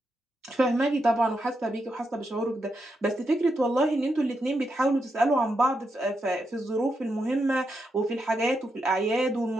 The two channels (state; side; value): normal; both; correlation 0.84